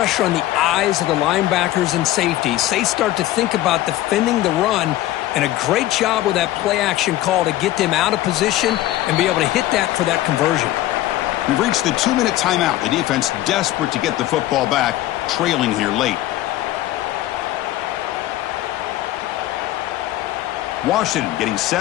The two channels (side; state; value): right; quieter; 15.2 dB